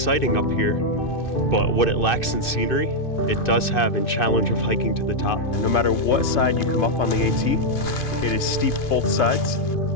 up here, but what it lacks in scenery, it does have in challenge of hiking to the top. No matter what side you come up on the AT, it is steep both sides.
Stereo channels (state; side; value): late; right; 2.6 ms